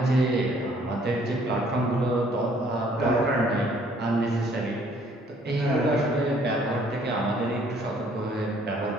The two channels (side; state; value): both; normal; correlation 0.61